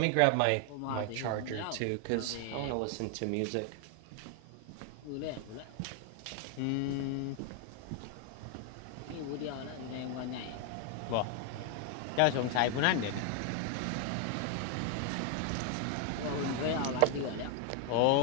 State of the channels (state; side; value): different; both; correlation 0.01